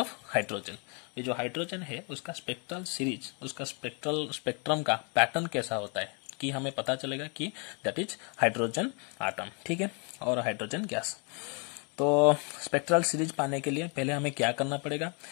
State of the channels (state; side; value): quieter; right; 35.3 dB